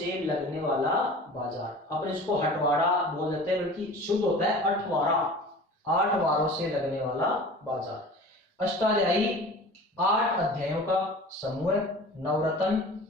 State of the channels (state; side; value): normal; both; correlation 0.40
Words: लगने वाला बाजार, अपन इसको हटवाड़ा बोल देते हैं, बल्कि शुद्ध होता है अठवारा, 8 वारों से लगने वाला बाजार। अष्टाध्यायी 8 अध्यायों का समूह है। नवरत्न